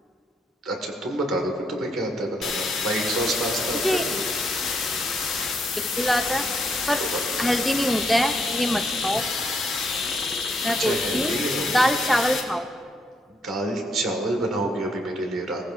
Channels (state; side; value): normal; both; correlation 0.75